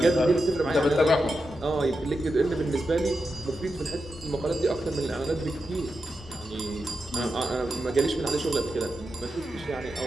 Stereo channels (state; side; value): normal; both; correlation 0.89